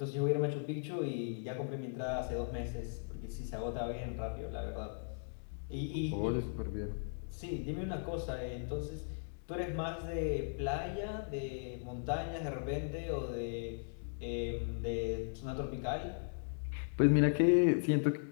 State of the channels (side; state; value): right; silent; digital silence